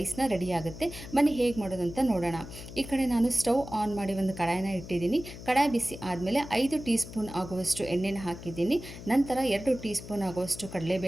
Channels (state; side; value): noise; left; hum, 13 dB below the sound